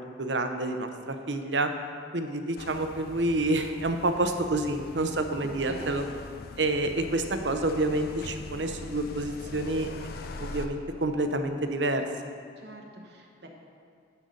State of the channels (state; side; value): normal; both; correlation 0.20